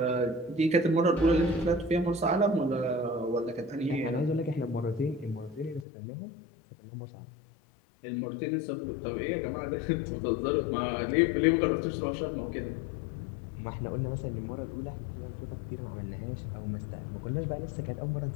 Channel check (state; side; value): drops out; right; at 5.9 s